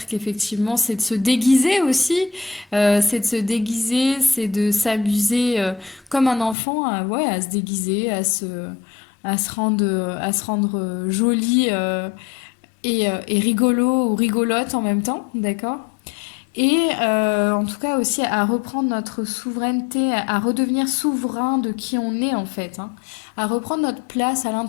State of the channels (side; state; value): right; drops out; at 6.6 s